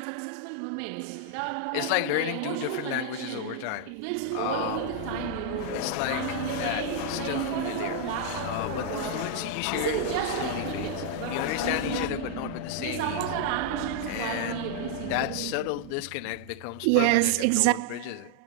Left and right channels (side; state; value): both; different; correlation -0.01